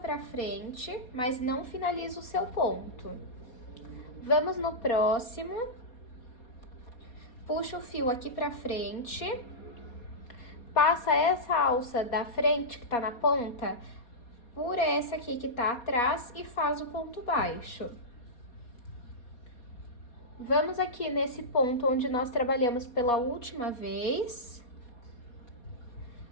frente, mas não finaliza o seu ponto. Vamos no próximo, puxa o fio aqui para frente. Passa essa alça da frente, que tá na ponta, por essa aqui que tá atrás e faz o ponto baixo. Vamos aqui nesse ponto onde nós trabalhamos pela última vez.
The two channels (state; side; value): late; right; 4.2 ms